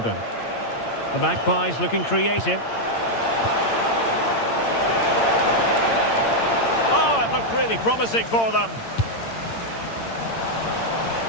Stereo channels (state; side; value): late; right; 8.8 ms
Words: The Magpies looking creative. Oh, it looked really promising for them.